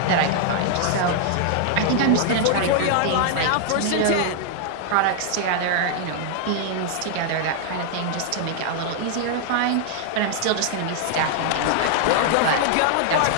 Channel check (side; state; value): both; different; correlation -0.01